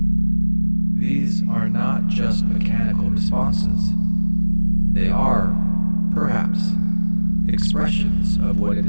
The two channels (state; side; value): inverted; both; correlation -1.00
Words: These are not just mechanical responses. They are, perhaps, expressions of what it